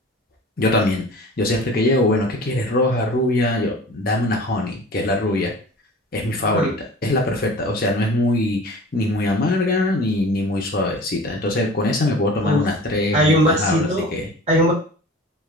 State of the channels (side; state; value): both; normal; correlation 0.41